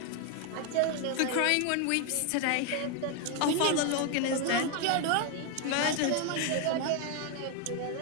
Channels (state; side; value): different; both; correlation 0.01